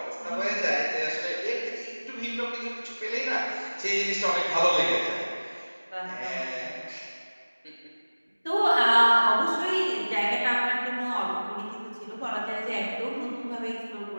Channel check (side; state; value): both; inverted; correlation -1.00